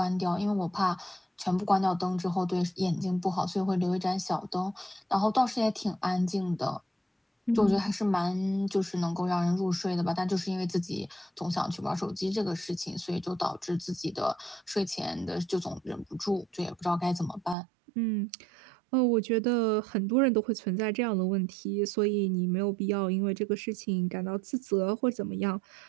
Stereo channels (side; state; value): left; drops out; at 17.6 s